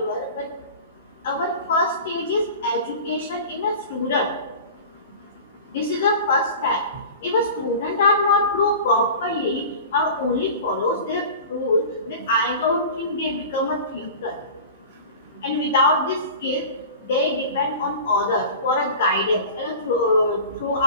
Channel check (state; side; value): inverted; both; correlation -0.37